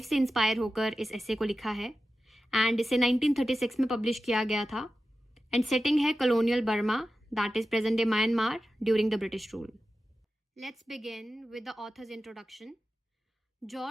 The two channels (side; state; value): both; normal; correlation 0.93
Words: से इंस्पायर होकर इस एसे को लिखा है एंड इसे 1936 में पब्लिश किया गया था। एंड सेटिंग है colonial Burma that is present day Myanmar during the British rule. Let's begin with the author's introduction.